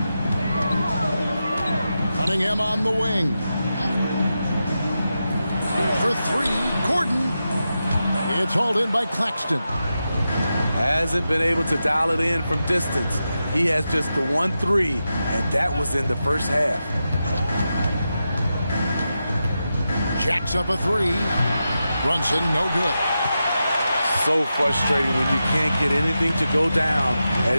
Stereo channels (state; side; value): inverted; both; correlation -0.90